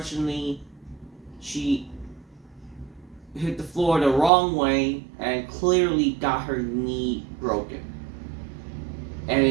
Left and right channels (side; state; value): left; drops out; at 4.3 s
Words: she hit the floor the wrong way and clearly got her knee broken. And